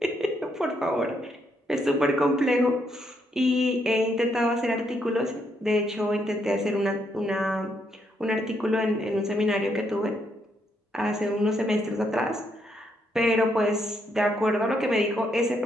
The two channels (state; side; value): normal; both; correlation 0.76